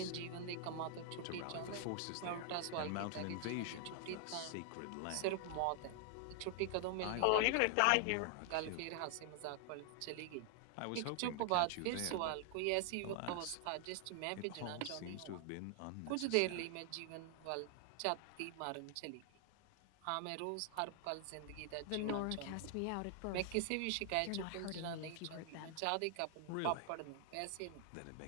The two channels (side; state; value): both; different; correlation 0.00